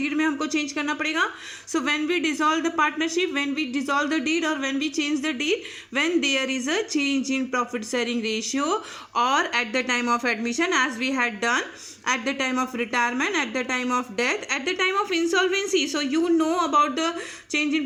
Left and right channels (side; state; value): both; identical; correlation 1.00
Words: में हमको चेंज करना पड़ेगा. So when we dissolve the partnership, when we dissolve the deed और when we change the deed, when there is a change in profit sharing ratio और at the time of admission as we had done, at the time of retirement, at the time of death, at the time of insolvency. So you know about the change in